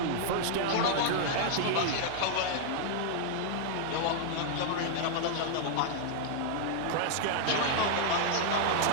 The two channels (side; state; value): both; different; correlation -0.01